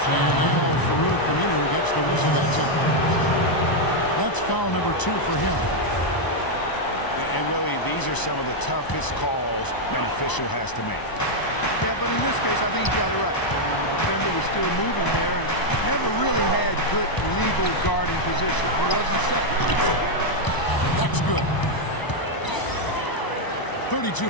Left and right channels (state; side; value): late; right; 1.0 ms